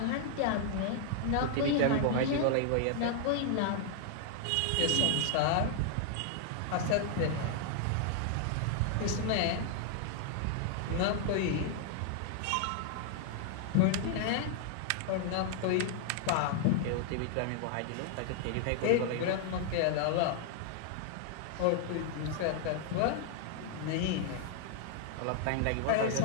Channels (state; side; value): different; both; correlation -0.01